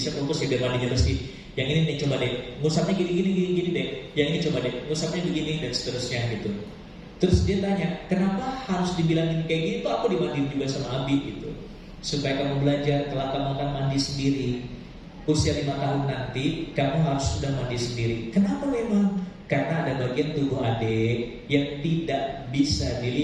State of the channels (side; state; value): both; identical; correlation 1.00